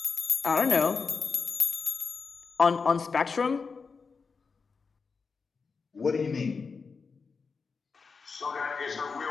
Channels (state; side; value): quieter; right; 5.0 dB